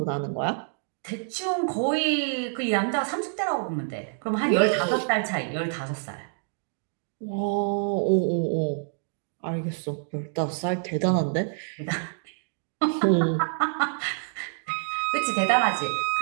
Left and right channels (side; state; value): left; silent; 60 dB below the other